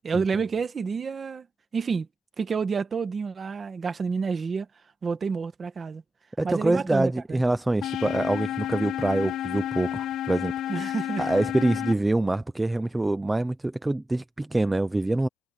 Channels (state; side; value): normal; both; correlation 0.91